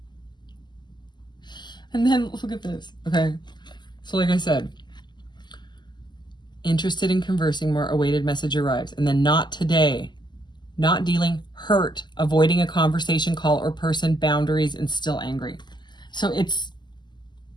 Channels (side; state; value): right; late; 0.21 ms